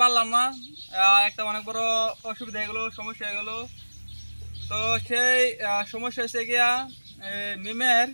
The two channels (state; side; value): inverted; both; correlation -1.00